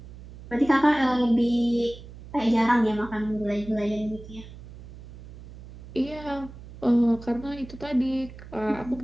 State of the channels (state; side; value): noise; right; hum, 16 dB below the sound